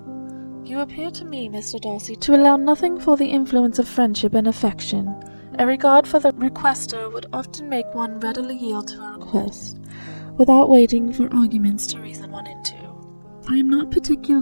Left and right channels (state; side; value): inverted; both; correlation -1.00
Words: You appear to me, Mr. Darcy, to allow nothing for the influence of friendship and affection. A regard for the requester would often make one readily yield to a request, without waiting for arguments to reason one into. I am not